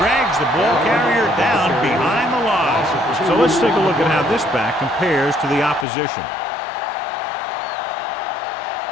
the ball carrier down behind the line. So let's take a look at how this back compares to the opposition.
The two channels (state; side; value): drops out; right; at 5.9 s